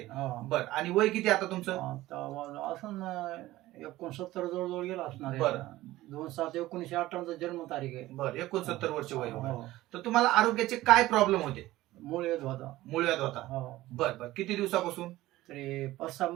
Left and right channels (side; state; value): left; quieter; 16.7 dB